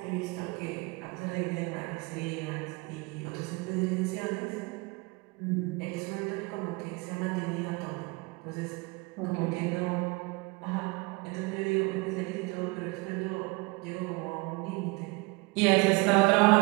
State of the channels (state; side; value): quieter; left; 26.0 dB